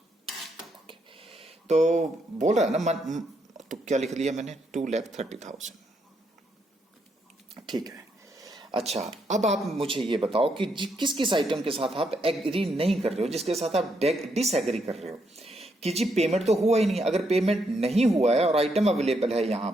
ओके, तो बोल रहा है ना तो क्या लिख लिया मैंने, 2,30,000। ठीक है। अच्छा, अब आप मुझे ये बताओ कि किस किस आइटम के साथ आप एग्री नहीं कर रहे हो, जिसके साथ आप डिसएग्री कर रहे हो कि जी पेमेंट तो हुआ ही नहीं। अगर पेमेंट नहीं हुआ है और आइटम अवेलेबल है यहां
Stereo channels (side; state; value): both; normal; correlation 0.77